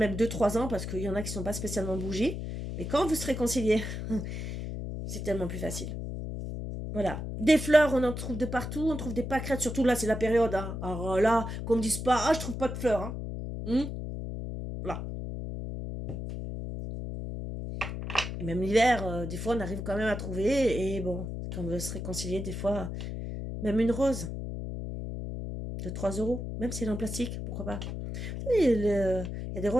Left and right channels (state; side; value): noise; left; hum, 5 dB below the sound